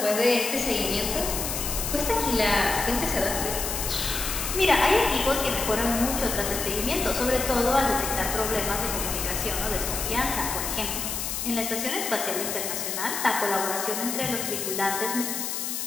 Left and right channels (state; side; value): noise; left; hiss, 3 dB below the sound